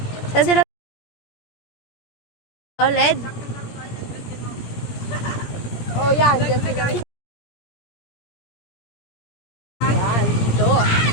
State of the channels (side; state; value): right; late; 17 ms